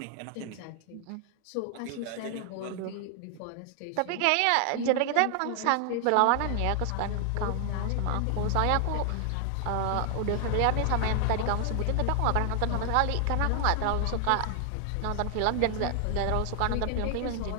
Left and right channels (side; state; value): both; different; correlation 0.00